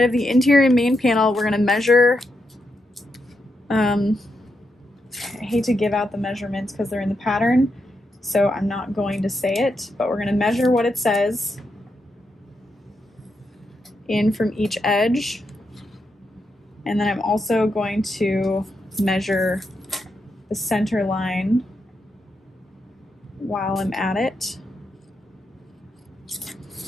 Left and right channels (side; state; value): both; normal; correlation 0.84